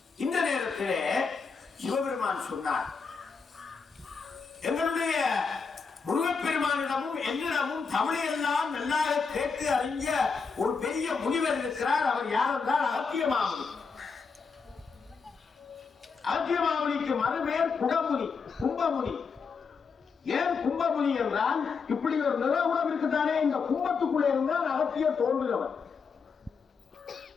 இந்த நேரத்தில் சிவபெருமான் சொன்னார், எங்களுடைய முருகப்பெருமானிடமும் என்னிடமும் தமிழையெல்லாம் நல்லாக கேட்டு அறிஞ்ச ஒரு பெரிய முனிவர் இருக்கிறார். அவர் யார் என்றால் அகத்திய மாமுனி. அகத்திய மாமுனிக்கு மறுபேர் குடமுனி, கும்பமுனி. ஏன் கும்பமுனி என்றால் இப்படி ஒரு நிலவுடம் இருக்குதானே, இந்த கும்பத்துக்குள்ளே இருந்தால் அகத்தியர் தோன்றுகிறவர்.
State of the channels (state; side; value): quieter; right; 5.3 dB